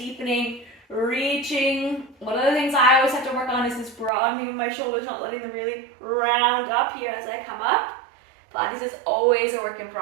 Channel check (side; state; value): left; drops out; at 4.1 s